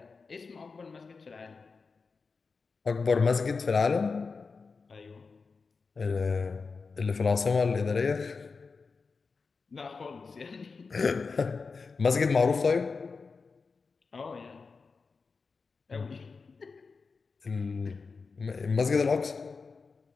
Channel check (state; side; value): quieter; right; 4.6 dB